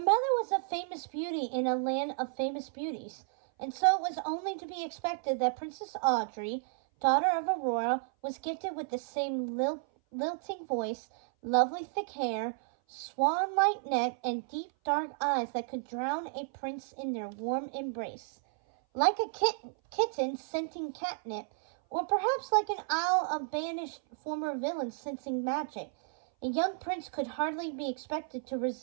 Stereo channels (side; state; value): left; silent; 56 dB below the other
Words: was a famous beauty in a land of famous beauties, and so it was only to be expected that Princess Audrey, daughter of Aurora, was gifted with the same lilting voice, lovely thick hair, swan-like neck, and deep dark eyes that could drown a prince in their warm embrace. Like a kitten scenting catnip, or perhaps like an owl of banished former villains sensing magic, a young prince could hardly be expected to